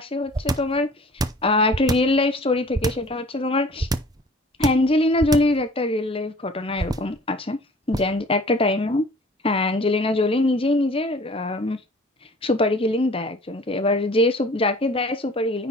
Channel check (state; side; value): normal; both; correlation 0.48